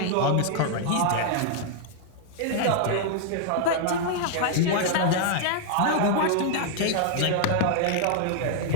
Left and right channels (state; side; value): different; both; correlation 0.00